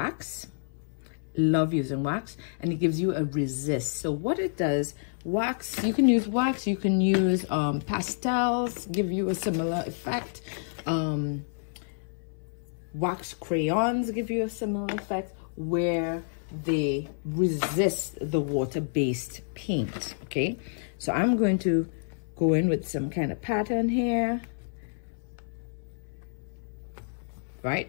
Love using wax, and it gives you a resist. So what it does, wax, you can use wax, you can use pastels, give you a similar effect. Wax crayons give you a similar effect where they resist the water-based paint. Okay, so I'm going to go in with some kind of pattern here. right?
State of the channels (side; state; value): right; silent; 59 dB below the other